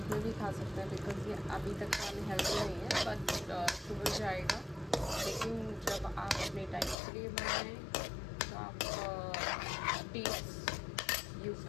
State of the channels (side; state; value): right; drops out; at 7.0 s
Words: में भी खा सकते हैं, बिकॉज ये अभी तक अनहेल्दी नहीं है, बट शुगर जाएगा। लेकिन जब आप अपने डाइट के लिए बनाएं तो आप डेट्स यूज़